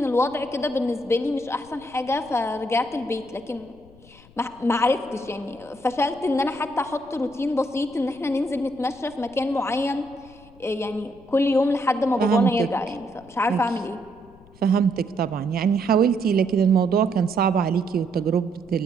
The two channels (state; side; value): noise; left; rumble, 25 dB below the sound